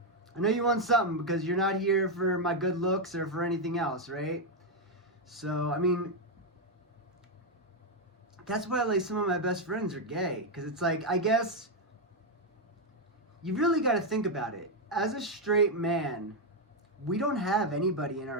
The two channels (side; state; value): both; normal; correlation 0.02